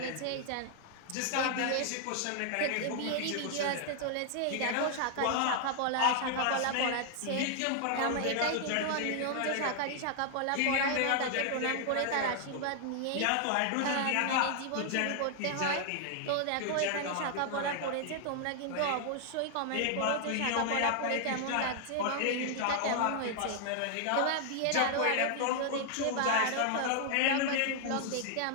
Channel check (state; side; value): different; both; correlation 0.00